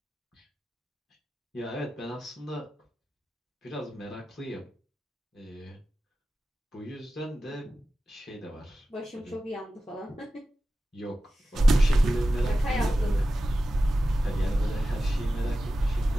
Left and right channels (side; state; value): both; normal; correlation 0.94